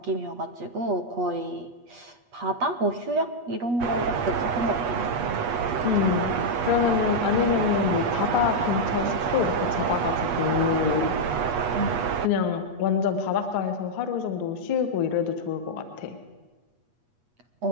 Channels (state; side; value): late; left; 8.3 ms